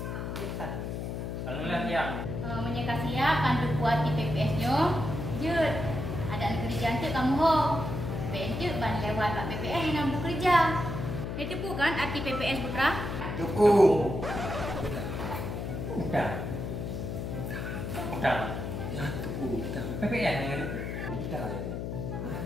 Alhamdulillah ya. Menyekasi ya kan kuat di PPS-nya. Jut. Ada nak kerja antuk kamu ho. Bentuk ban lewat Pak PPS yang nak bekerja. Itu bukan arti PPS Putra? Cukup. Bukan. Bukan. Ya, cukup. PPS yang ada. Bukan.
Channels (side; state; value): left; noise; hum, 4 dB below the sound